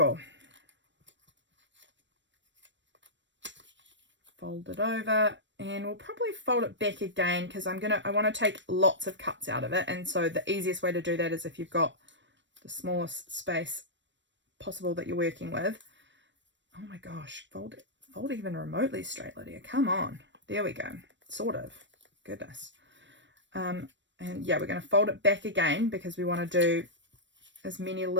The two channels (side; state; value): left; late; 0.53 ms